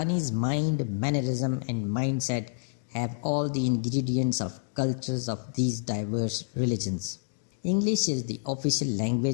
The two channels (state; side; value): silent; right; digital silence